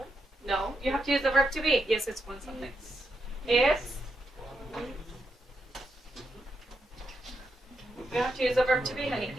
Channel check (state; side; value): normal; both; correlation 0.83